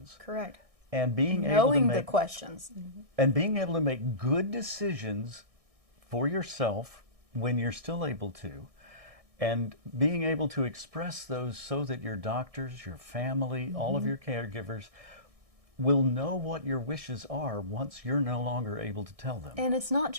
Correct. And being able to Knowing make the questions. and being able to make good decisions for yourself when you're still able to, and being able to express those so that your doctors, your family, all of your caregivers will know what your wishes are once you're no longer able to tell them. And it's not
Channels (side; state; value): left; late; 1.6 ms